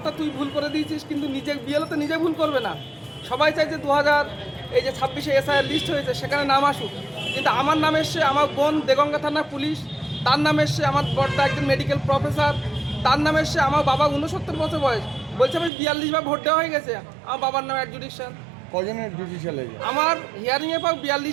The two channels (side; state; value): left; drops out; at 15.7 s